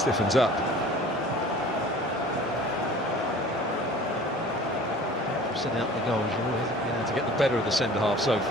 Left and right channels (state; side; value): normal; both; correlation 0.45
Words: up. forcing out the goals. He hasn't been able to get the better of the centre-half so